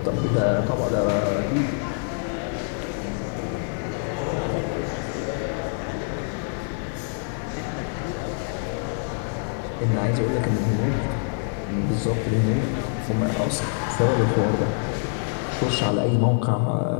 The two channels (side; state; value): right; silent; 62 dB below the other